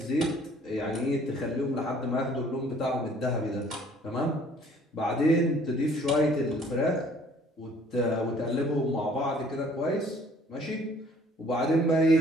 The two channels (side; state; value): both; normal; correlation 0.57